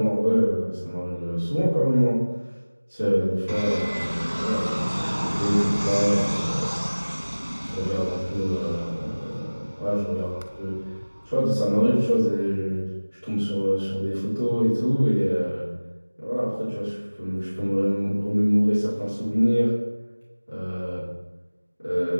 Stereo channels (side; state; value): both; inverted; correlation -1.00